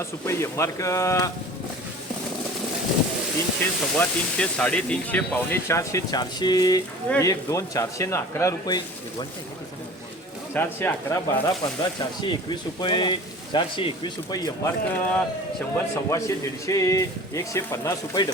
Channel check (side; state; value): both; normal; correlation 0.41